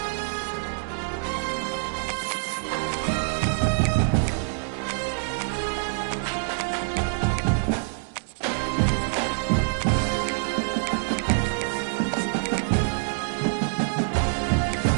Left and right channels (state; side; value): silent; left; digital silence